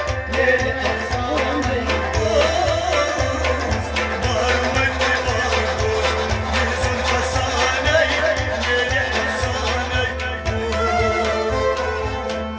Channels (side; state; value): both; identical; correlation 1.00